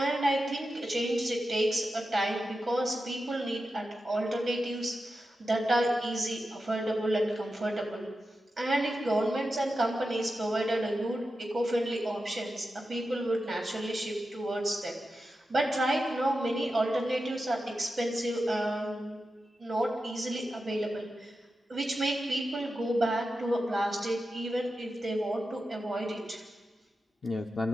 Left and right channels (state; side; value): normal; both; correlation 0.91